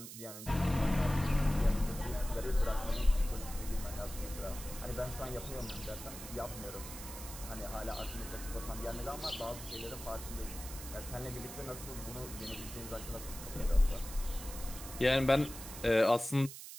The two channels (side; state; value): right; noise; hiss, 11 dB below the sound